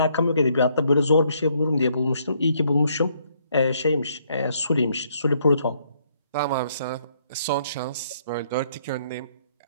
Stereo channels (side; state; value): both; inverted; correlation -0.69